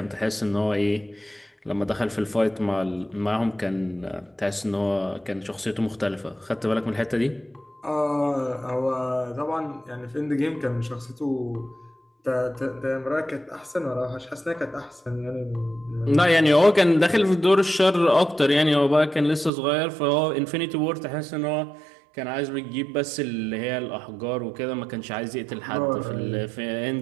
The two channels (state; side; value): drops out; left; at 19.5 s